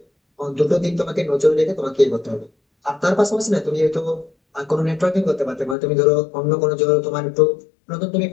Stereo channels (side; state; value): right; drops out; at 5.8 s